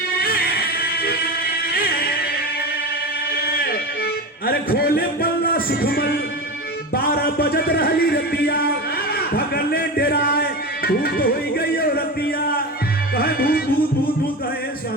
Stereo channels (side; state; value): both; normal; correlation 0.24